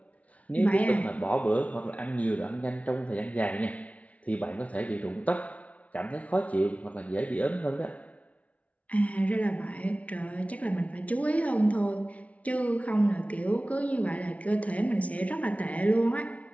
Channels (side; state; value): right; late; 0.066 ms